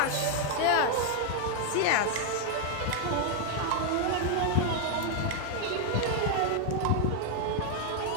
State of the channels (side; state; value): both; different; correlation 0.00